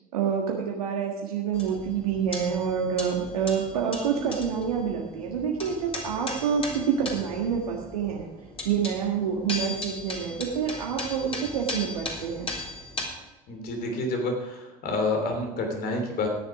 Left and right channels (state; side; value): quieter; left; 4.4 dB